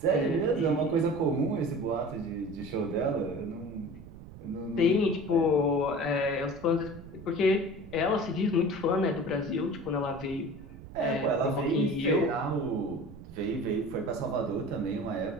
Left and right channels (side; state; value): right; noise; rumble, 16 dB below the sound